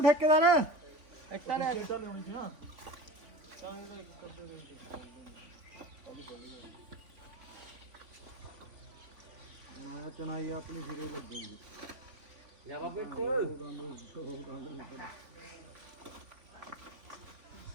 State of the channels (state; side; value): late; left; 3.5 ms